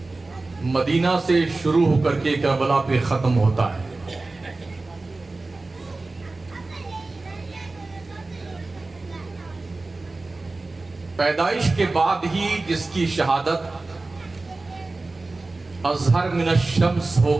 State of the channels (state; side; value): quieter; left; 3.3 dB